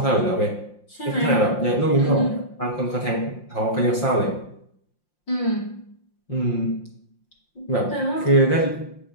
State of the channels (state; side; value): late; right; 5.7 ms